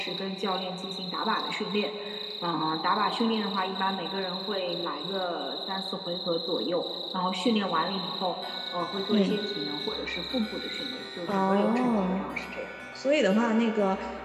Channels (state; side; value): identical; both; correlation 1.00